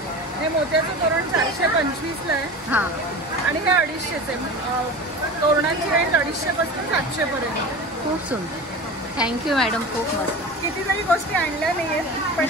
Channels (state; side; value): normal; both; correlation 0.32